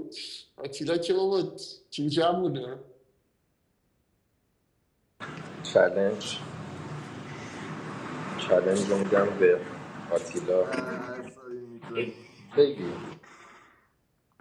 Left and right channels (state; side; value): identical; both; correlation 1.00